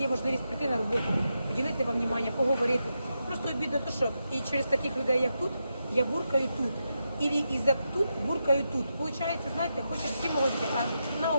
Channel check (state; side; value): inverted; both; correlation -0.86